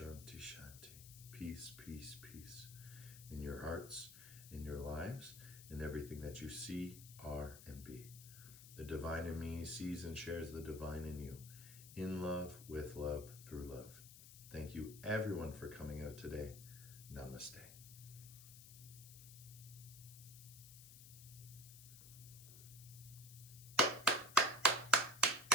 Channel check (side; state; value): left; noise; hiss, 15 dB below the sound